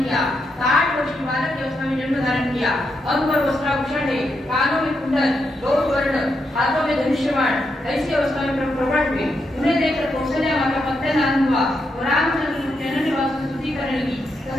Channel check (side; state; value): both; normal; correlation 0.82